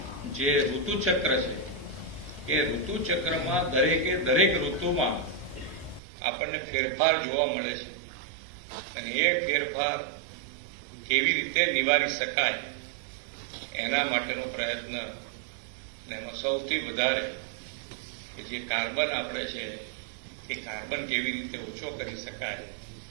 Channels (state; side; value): drops out; left; at 6.0 s